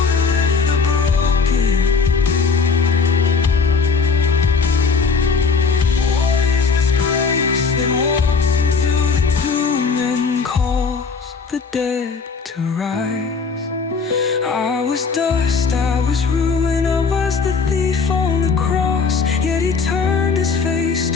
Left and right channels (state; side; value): quieter; right; 5.0 dB